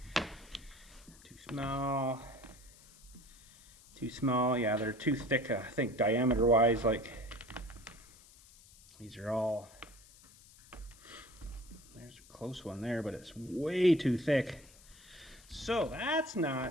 Too small. Too small. Yeah, they're too thick, I think, diameter-wise. Like, these are all There's a close one there, but it's way too thick. So that's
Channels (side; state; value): left; noise; hiss, 23 dB below the sound